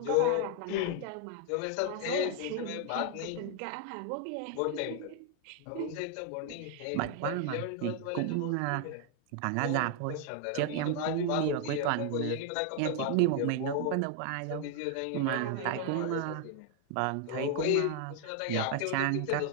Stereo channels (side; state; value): both; different; correlation 0.00